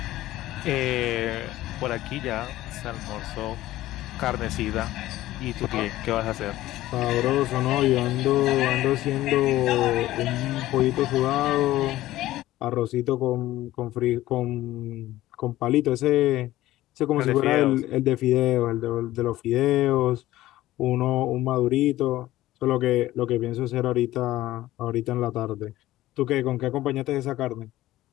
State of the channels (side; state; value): right; quieter; 15.6 dB